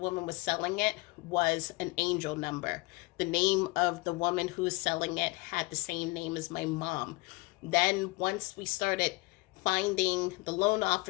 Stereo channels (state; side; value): quieter; right; 24.3 dB